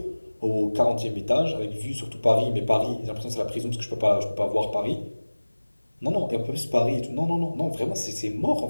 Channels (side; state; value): both; inverted; correlation -1.00